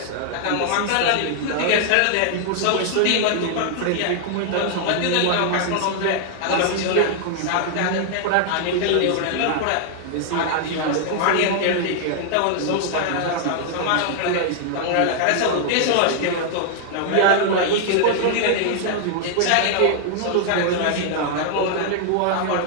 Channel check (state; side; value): different; both; correlation 0.00